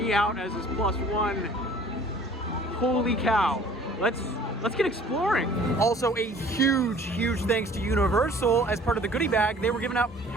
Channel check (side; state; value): both; normal; correlation 0.51